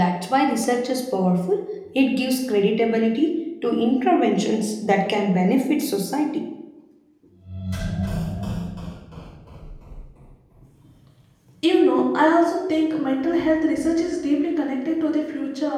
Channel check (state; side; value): identical; both; correlation 1.00